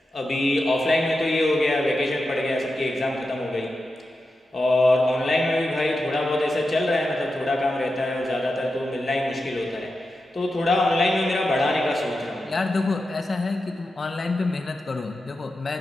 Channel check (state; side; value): normal; both; correlation 0.90